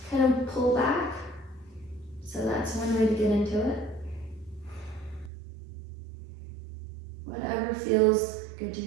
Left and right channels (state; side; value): drops out; left; at 5.3 s